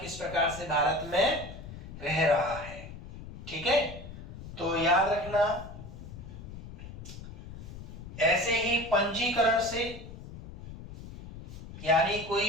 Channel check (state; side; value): noise; left; rumble, 12 dB below the sound